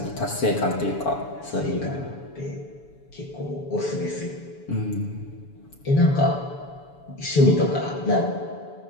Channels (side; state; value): right; late; 7.0 ms